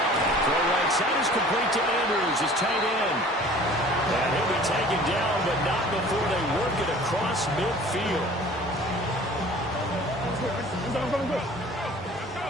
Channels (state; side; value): normal; both; correlation 0.47